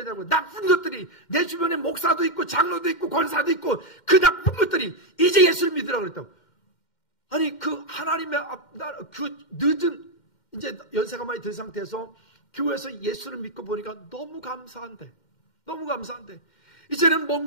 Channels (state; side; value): late; right; 2.1 ms